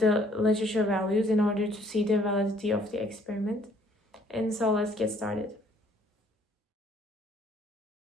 literature values in order to see the validity of the experiment. And so let's get started.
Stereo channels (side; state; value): both; normal; correlation 0.61